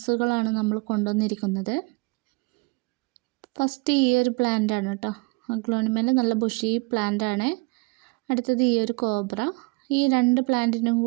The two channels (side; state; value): left; quieter; 27.4 dB